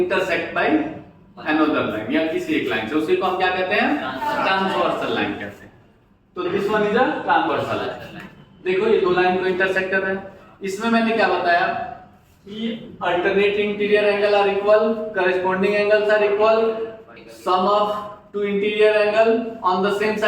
by another line या किसी एक लाइन से, उसी को हम क्या कहते हैं? ट्रांसवर्सल लाइन कहते हैं। तो this one is a transversal line. देखो ये दो लाइन को इंटरसेक्ट कर रहे हैं। इसमें मैंने क्या बताया कि alternate interior angle are equal, corresponding angles are equal, sum of two interior angle on the same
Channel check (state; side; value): identical; both; correlation 1.00